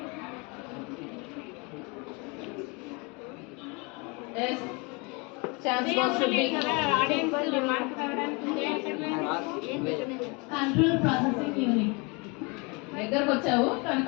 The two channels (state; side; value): quieter; right; 29.0 dB